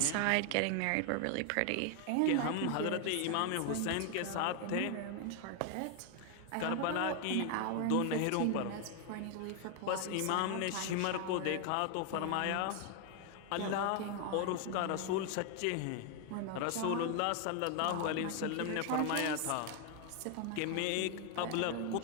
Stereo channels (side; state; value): both; different; correlation 0.01